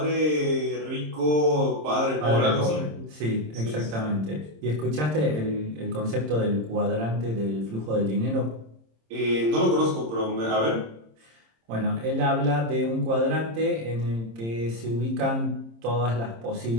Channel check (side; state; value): left; late; 26 ms